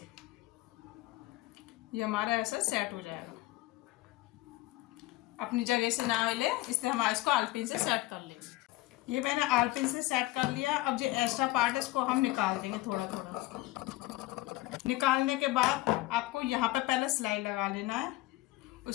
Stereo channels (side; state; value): right; quieter; 18.6 dB